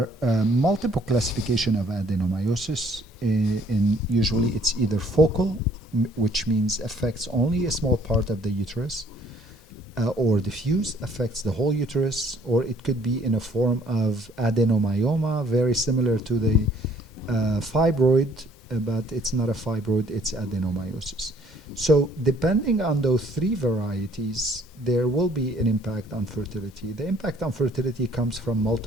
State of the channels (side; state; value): both; normal; correlation 0.60